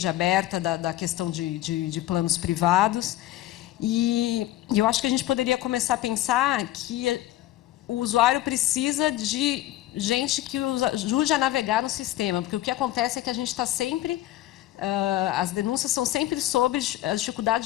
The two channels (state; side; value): quieter; right; 14.8 dB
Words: aberta da questão de planos privados. E eu acho que a gente poderia começar a pensar que o usuário precisa de gente que ajude a navegar no sistema, porque o que acontece é que a gente está sempre... as denúncias são sempre sobre a